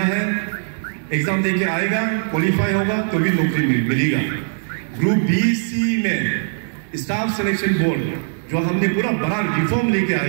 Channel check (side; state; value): left; silent; 66 dB below the other